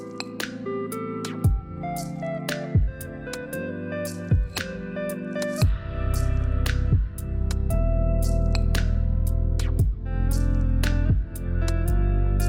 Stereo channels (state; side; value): identical; both; correlation 1.00